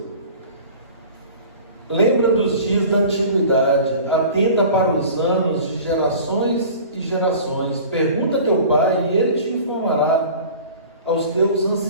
Lembra dos dias da antiguidade, atenta para os anos de gerações e gerações. Pergunta a teu pai e ele te informará. Aos teus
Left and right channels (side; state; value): both; inverted; correlation -0.42